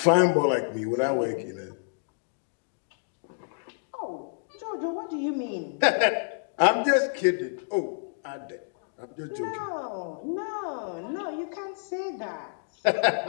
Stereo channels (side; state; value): right; silent; digital silence